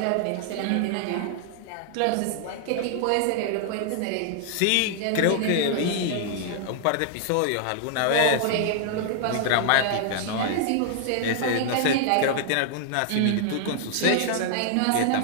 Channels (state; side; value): different; both; correlation 0.00